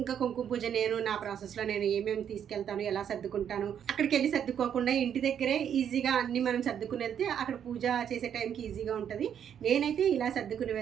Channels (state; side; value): quieter; left; 8.8 dB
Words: ఇంకా కుంకుమ పూజ నేను నా ప్రాసెస్లో నేను ఏమేమి తీసుకెళ్తాను, ఎలా సర్దుకుంటాను, అక్కడికి వెళ్ళి సర్దుకోకుండా ఇంటి దగ్గరే ఈజీగా అన్ని మనం సర్దుకుని వెళ్తే అక్కడ పూజ చేసే టైంకి ఈజీగా ఉంటుంది. నేనైతే ఇలా సర్దుకుని